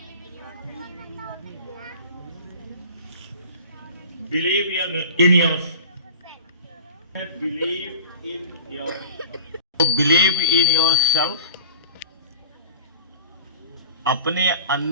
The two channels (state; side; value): inverted; both; correlation -0.40